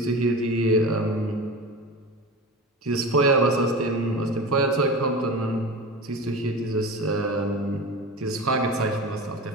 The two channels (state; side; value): normal; both; correlation 0.30